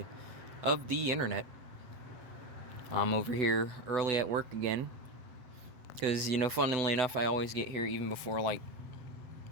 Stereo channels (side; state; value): left; late; 8.2 ms